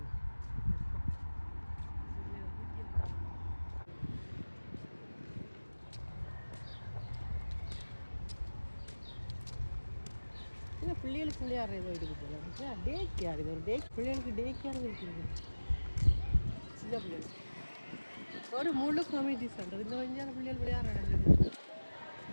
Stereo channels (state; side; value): inverted; both; correlation -1.00